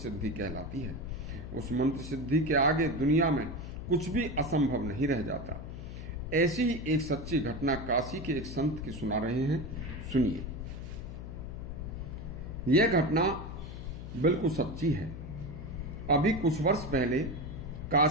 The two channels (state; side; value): noise; left; hum, 9 dB below the sound